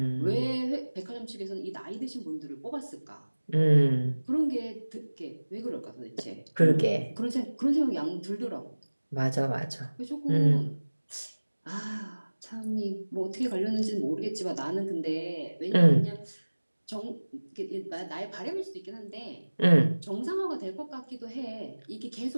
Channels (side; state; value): both; inverted; correlation -1.00